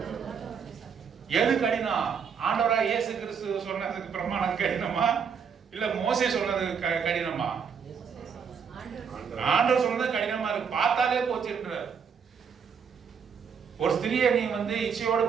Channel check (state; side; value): quieter; left; 6.7 dB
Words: எது கடினம்? ஆண்டவராக இயேசு கிறிஸ்து சொன்னதுக்கு பிரமாணம் கடினமா, இல்ல மோசே சொன்னது கடினமா? ஆண்டவர் சொன்னது கடினமா இருக்கு. பார்த்தாலே போச்சுன்ற ஒரு ஸ்திரியை நீ இச்சையோடு